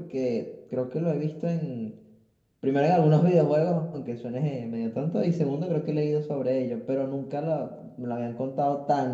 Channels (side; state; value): both; identical; correlation 1.00